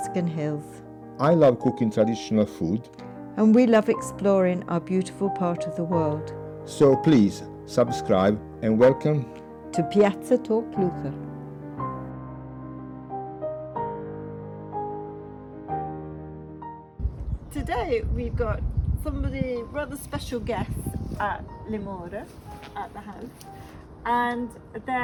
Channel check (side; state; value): both; identical; correlation 1.00